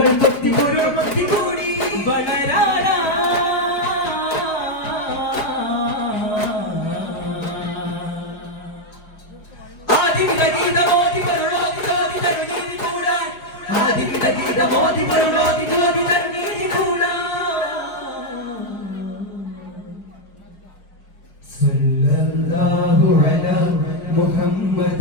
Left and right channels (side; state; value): right; late; 4.8 ms